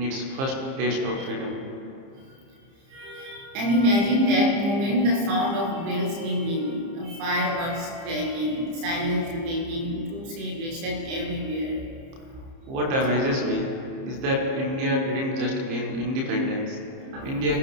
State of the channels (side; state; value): left; late; 30 ms